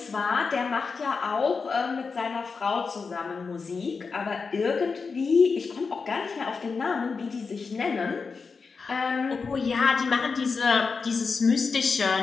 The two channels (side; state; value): right; quieter; 4.9 dB